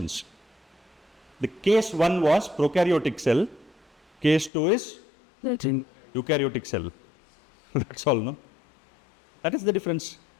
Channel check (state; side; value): drops out; right; at 4.5 s